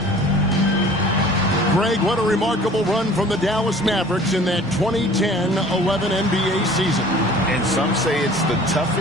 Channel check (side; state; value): both; normal; correlation 0.48